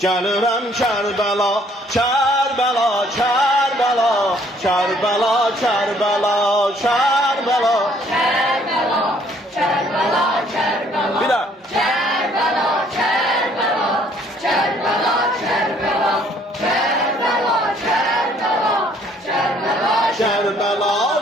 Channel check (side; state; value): both; normal; correlation 0.62